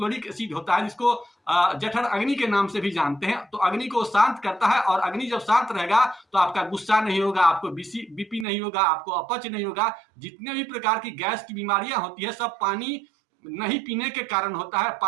एसिड होता है, जिसको जठर अग्नि के नाम से भी जानते हैं, तो अग्नि को शांत करता है। और अग्नि जब शांत रहेगा तो आपका गुस्सा नहीं होगा, आपको बीपी नहीं होगा, आपको अपच नहीं होगा। जितने भी प्रकार की गैस की बीमारियां होती है सब पानी नहीं पीने के कारण होता है,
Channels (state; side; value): drops out; left; at 8.5 s